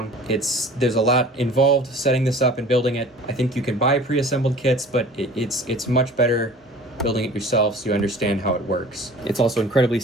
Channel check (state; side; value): normal; both; correlation 0.44